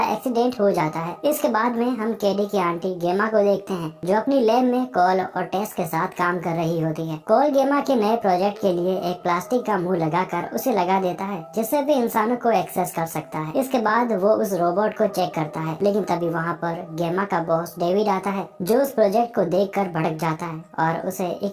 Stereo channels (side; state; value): both; identical; correlation 1.00